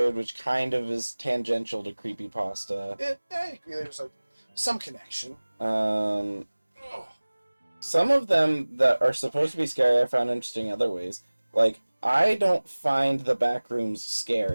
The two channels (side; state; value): both; inverted; correlation -1.00